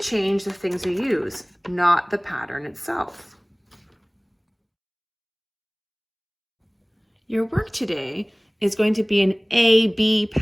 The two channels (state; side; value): identical; both; correlation 1.00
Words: the things we use, not the pattern itself. Your work today is going to be an A-B